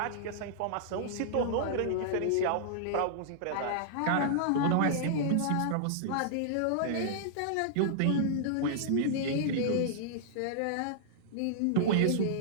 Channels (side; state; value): both; different; correlation -0.01